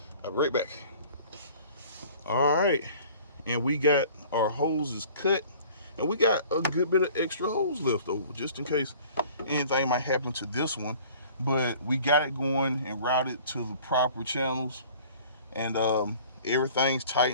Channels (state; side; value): inverted; both; correlation -0.48